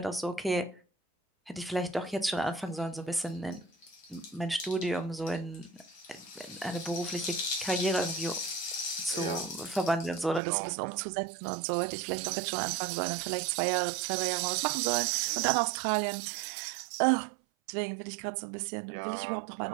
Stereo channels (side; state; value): left; drops out; at 10.4 s